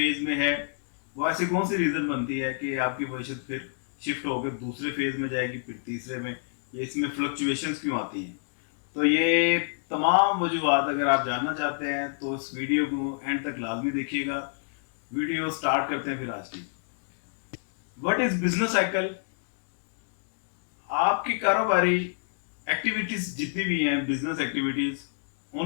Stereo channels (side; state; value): right; silent; 60 dB below the other